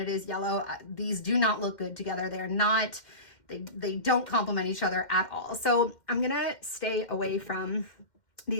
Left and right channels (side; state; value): right; late; 2.1 ms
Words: it is yellow. These do not look good together. They're not, they don't complement each other at all. So I'm gonna stay away from